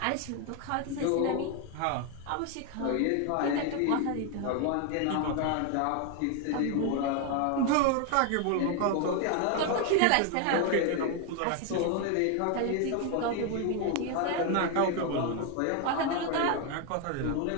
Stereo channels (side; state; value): both; different; correlation 0.01